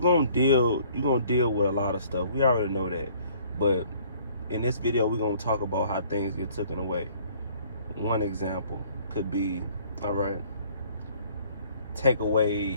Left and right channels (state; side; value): inverted; both; correlation -0.57